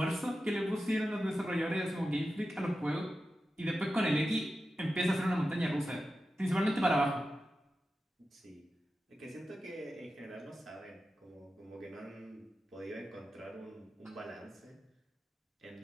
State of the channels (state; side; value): normal; both; correlation 0.92